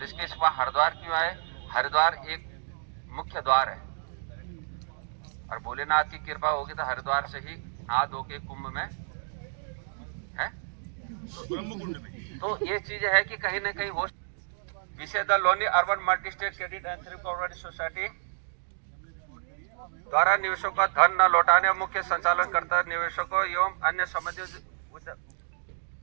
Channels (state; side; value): silent; left; digital silence